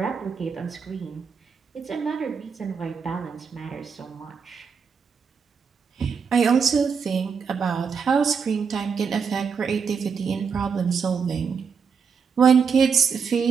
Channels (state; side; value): quieter; left; 6.1 dB